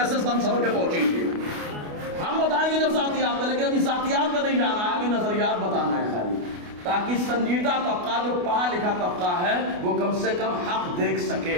سن سبر کے پہنچی گی. ہم بتائیں گے جب ذاتیات میں, لیکن ابھی ذاتیات میں نہیں جانا ہے, ابھی نظریات بتانا ہے خالی, تاکہ سنجیدہ طبقہ جو پڑھا لکھا طبقہ ہے وہ کم سے کم حق دیکھ سکے.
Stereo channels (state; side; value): late; left; 28 ms